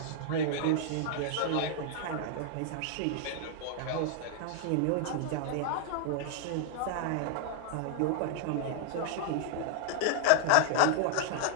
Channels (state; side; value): different; both; correlation 0.00